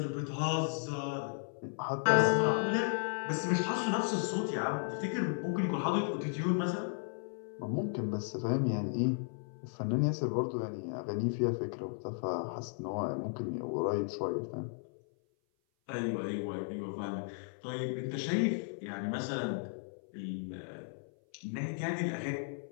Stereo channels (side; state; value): right; silent; 54 dB below the other